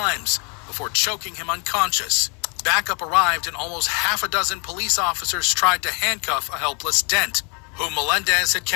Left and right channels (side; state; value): right; quieter; 34.7 dB